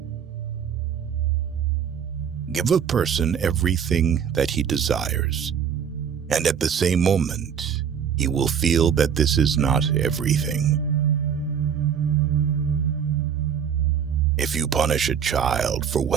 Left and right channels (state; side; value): quieter; left; 7.8 dB